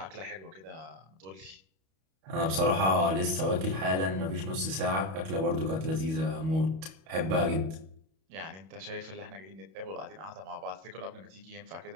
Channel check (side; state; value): left; late; 31 ms